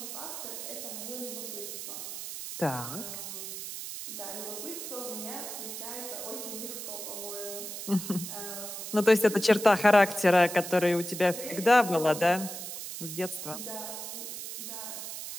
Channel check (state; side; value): noise; right; hiss, 8 dB below the sound